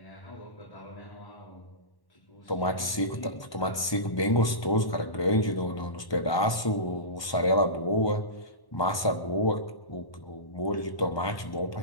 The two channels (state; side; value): late; right; 1.2 ms